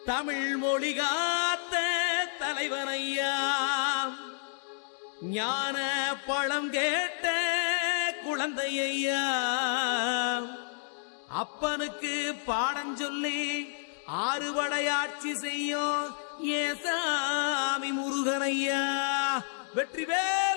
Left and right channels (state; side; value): silent; right; digital silence